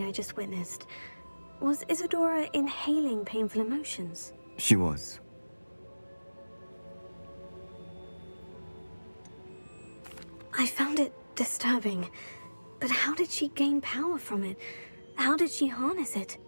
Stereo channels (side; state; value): both; inverted; correlation -1.00